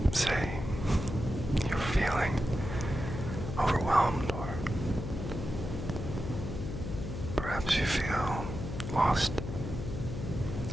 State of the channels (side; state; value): left; noise; hum, 6 dB below the sound